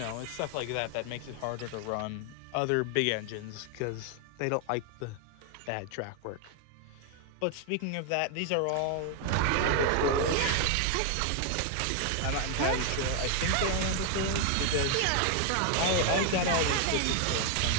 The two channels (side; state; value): both; different; correlation 0.00